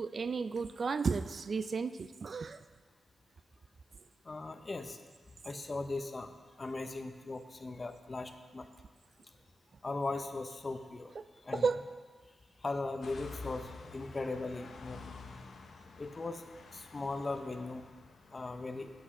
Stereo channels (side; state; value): both; normal; correlation 0.89